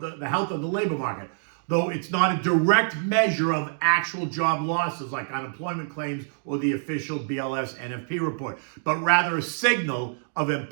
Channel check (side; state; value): left; silent; digital silence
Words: labor market. Though it's not a direct measure of actual job losses like unemployment claims or the official BLS NFP report, but rather a signal of